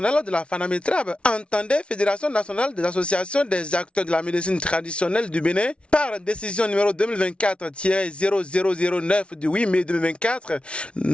de la FANAMETRAB entendait Fédération nationale des associations des acteurs de la médecine traditionnelle du Bénin, par décision numéro 2024-0009 du 8 mai 2024,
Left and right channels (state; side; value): late; right; 0.059 ms